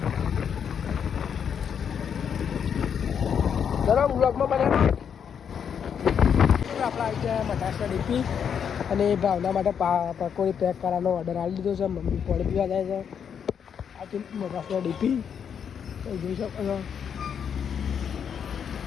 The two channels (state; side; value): quieter; right; 7.7 dB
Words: ચલો બ્લોગમાં બને આપણે આવી ગયા મટાસના ડીપી અને ભાવના માટે પકોડી પેક કરવાનો ઓર્ડર આપી દીધો છે મમ્મી પાણી પીવા જાય છે આ તો મટાસના ડીપી જોઈ શકો છો